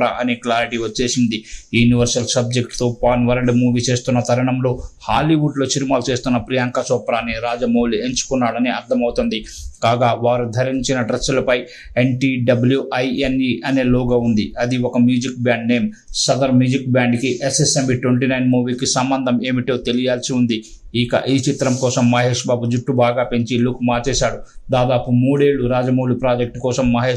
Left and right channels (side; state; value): both; identical; correlation 1.00